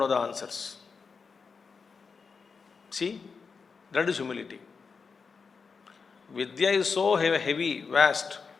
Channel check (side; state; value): right; quieter; 5.2 dB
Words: the answers. See, that is humility. Vidya is so heavy, vast.